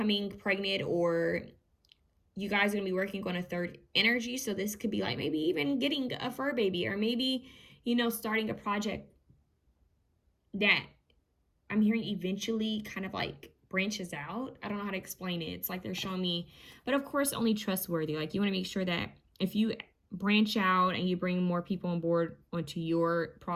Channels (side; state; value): both; identical; correlation 1.00